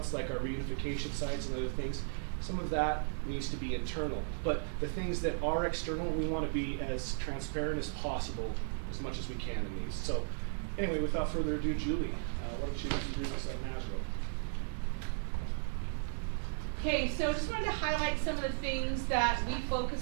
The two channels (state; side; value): silent; left; digital silence